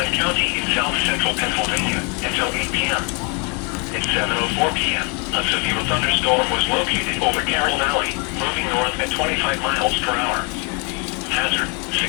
County in south-central Pennsylvania until 8 p.m. At 7:04 p.m., a severe thunderstorm was located over Carroll Valley, moving north at 25 miles per hour. Hazard,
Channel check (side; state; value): right; quieter; 34.9 dB